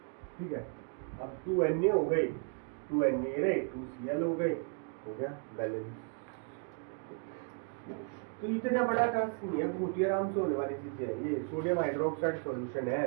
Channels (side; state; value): left; quieter; 37.2 dB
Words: ठीक है। अब 2Na हो गई, 2Na रहे, 2Cl हो गए, हो गया बैलेंस। तो इतना बड़ा टास्क नहीं है, बहुत ही आराम से होने वाली चीज है ये। सोडियम हाइड्रोक्साइड सॉल्यूशन है